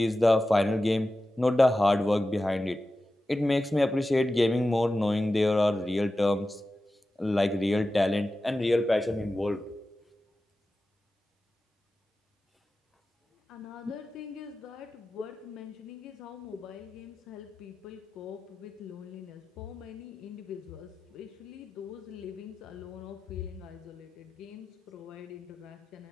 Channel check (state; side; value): normal; both; correlation 0.94